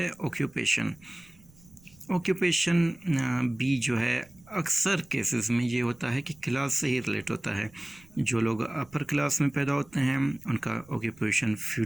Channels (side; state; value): right; noise; rumble, 27 dB below the sound